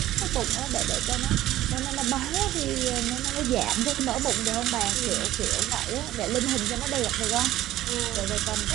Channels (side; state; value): left; quieter; 14.4 dB